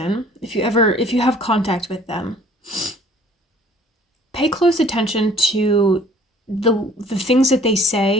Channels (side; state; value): both; normal; correlation 0.54